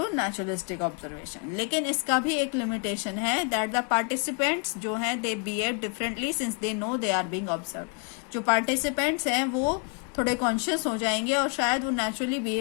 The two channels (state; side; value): quieter; right; 36.5 dB